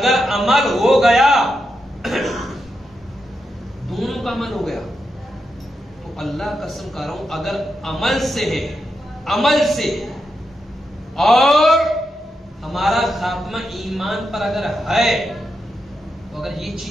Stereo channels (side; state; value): both; normal; correlation 0.86